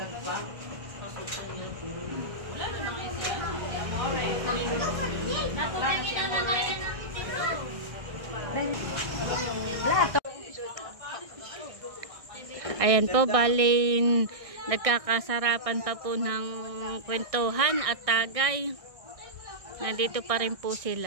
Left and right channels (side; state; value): left; late; 1.6 ms